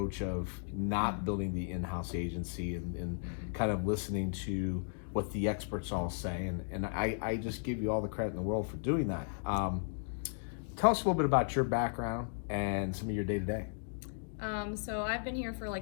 of not building the in-house agency and kind of listening to what the experts all say. And I just give you all the credit in the world for doing that. Tell us a little bit about your background and some of your day-to-day. So I've been here for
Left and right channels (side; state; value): right; silent; digital silence